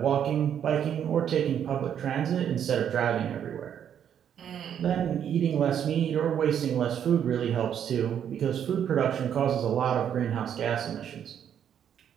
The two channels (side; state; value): left; quieter; 9.1 dB